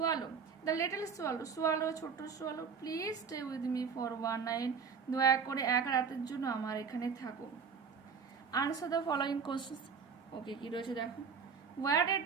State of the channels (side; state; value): left; quieter; 6.0 dB